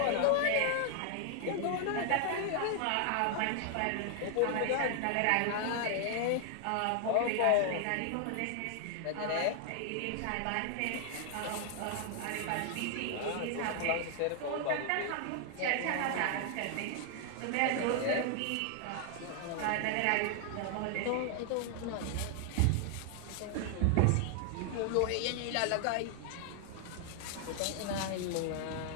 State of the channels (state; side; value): different; both; correlation 0.00